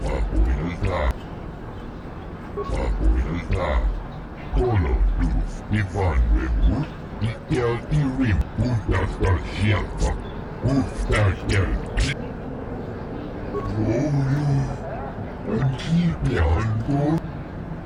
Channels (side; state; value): both; identical; correlation 1.00